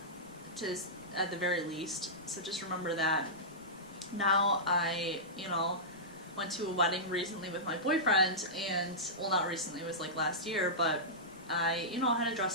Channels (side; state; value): right; noise; rumble, 27 dB below the sound